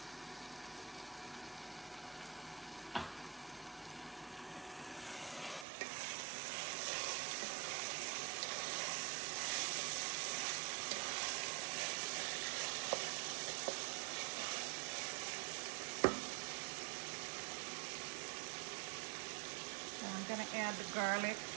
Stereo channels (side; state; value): left; drops out; at 5.7 s